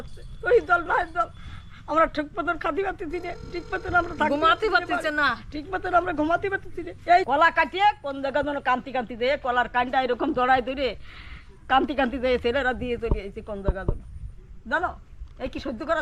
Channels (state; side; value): identical; both; correlation 1.00